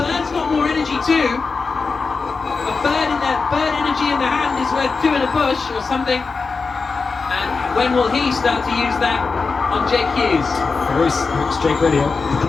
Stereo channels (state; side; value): quieter; right; 4.5 dB